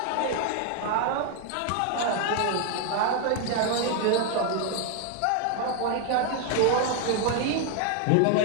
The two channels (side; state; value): both; different; correlation 0.01